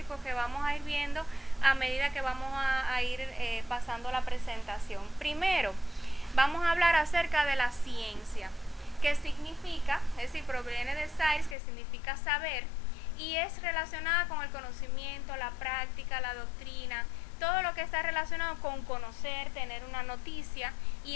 que vamos a ir viendo a medida que vamos a ir pasando la presentación. Primero, vamos a hablar acerca de la ciencia, que significa, es decir, proviene de science, que significa saber, y es relacionada con el conocimiento, la práctica, la doctrina, todo lo que está relacionado con conocer, tener una noticia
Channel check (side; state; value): right; drops out; at 11.6 s